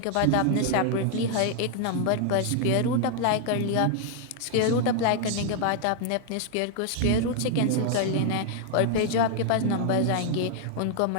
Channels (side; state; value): both; different; correlation 0.00